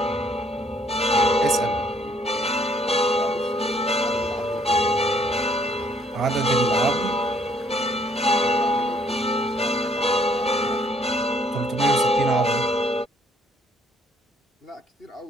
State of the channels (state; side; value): normal; both; correlation 0.64